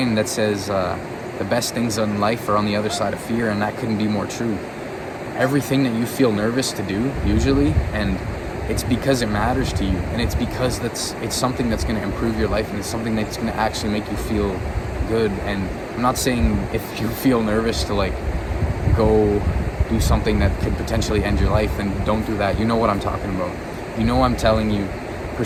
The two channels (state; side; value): identical; both; correlation 1.00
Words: that says the best things in life are on the other side of fear, and that couldn't be more true. Everything that you feel nervous to do, usually, and it's because it matters to you, and it's because it's something that's going to improve your life, and it's something that's going to actually make you feel good. And I'm not saying if you feel nervous to go do something that could potentially end your life, then don't do that. You know what I'm talking about. You know I'm telling you,